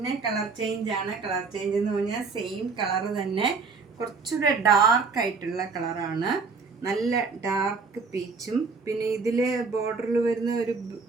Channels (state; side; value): quieter; left; 4.6 dB